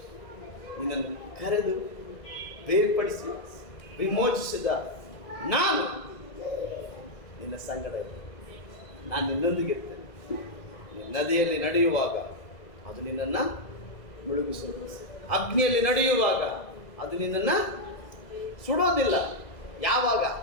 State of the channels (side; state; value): right; late; 2.0 ms